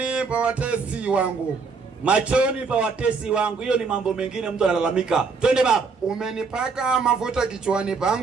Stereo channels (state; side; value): quieter; left; 4.8 dB